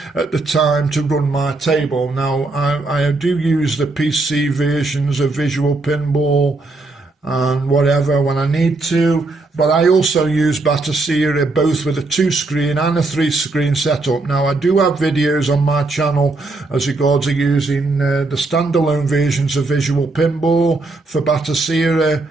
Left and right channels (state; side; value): quieter; left; 3.3 dB